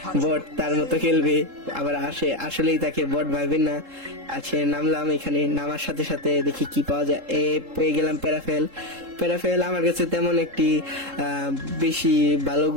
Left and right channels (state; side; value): late; left; 3.7 ms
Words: বট তার মতো খেলবে। আবার আসলেই তাকে বট ভাববেন না। আছে, নামলাম। এখানে নামার সাথে সাথে দেখি কি পাওয়া যায়। পেয়ে গেলাম প্যারাফেল। প্যারাফেল আমার কাছে তেমন একটি বেশি ভালো